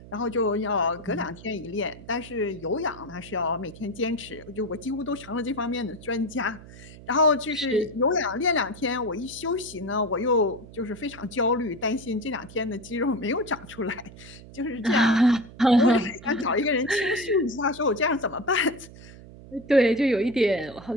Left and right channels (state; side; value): noise; right; hum, 18 dB below the sound